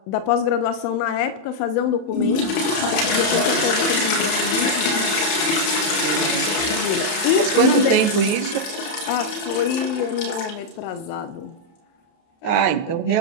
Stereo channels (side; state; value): right; late; 30 ms